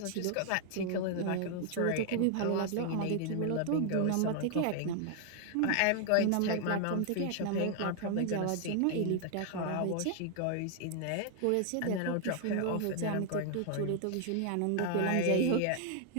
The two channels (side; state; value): both; different; correlation 0.00